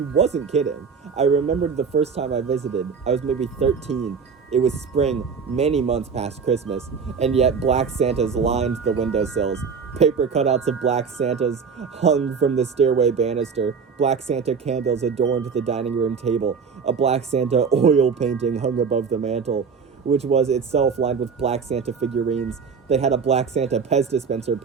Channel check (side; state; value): left; quieter; 5.8 dB